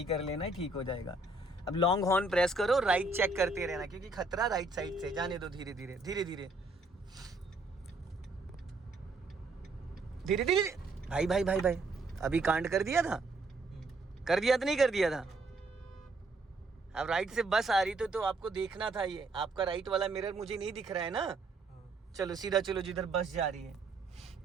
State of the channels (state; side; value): quieter; left; 3.1 dB